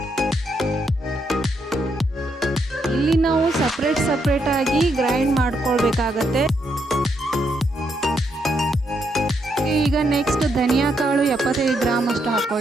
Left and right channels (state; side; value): normal; both; correlation 0.77